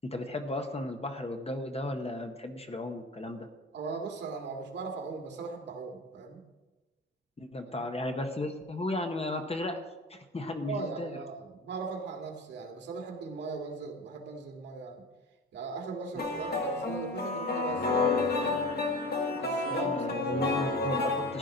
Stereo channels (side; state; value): both; normal; correlation 0.34